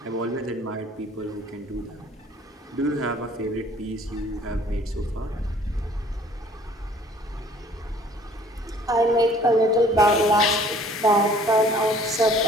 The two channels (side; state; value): both; normal; correlation 0.55